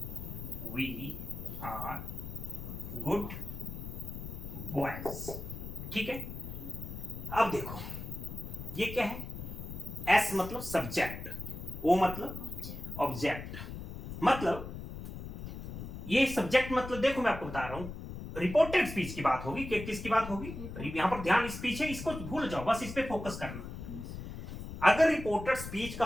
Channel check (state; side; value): noise; left; rumble, 9 dB below the sound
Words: we are good boys. ठीक है, अब देखो ये क्या है, एस मतलब सब्जेक्ट, ओ मतलब Object. ऑब्जेक्ट, मतलब ये सब्जेक्ट मतलब देखो मैं आपको बता रहा हूं, रिपोर्टेड स्पीच की बात होगी कि किसकी बात होगी, यहां पर ध्यान स्पीच है, इसको भूल जाओ, बस इस पे फोकस करना। अगर रिपोर्टेड स्पीच का